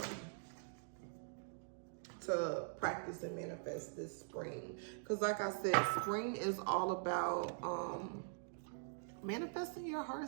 to practice and manifest this spring. Because like I said, spring is all about manifesting your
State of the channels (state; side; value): silent; left; digital silence